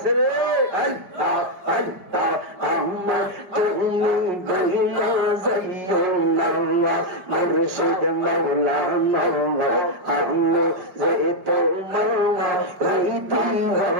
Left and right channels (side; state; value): left; late; 5.1 ms